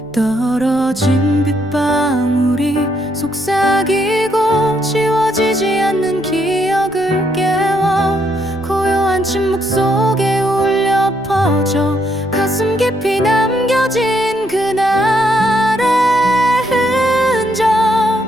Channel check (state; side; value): noise; left; rumble, 26 dB below the sound